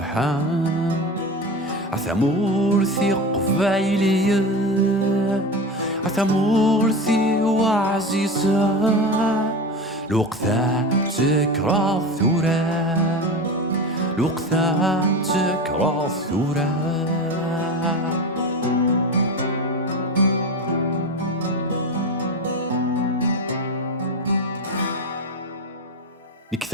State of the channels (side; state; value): both; normal; correlation 0.25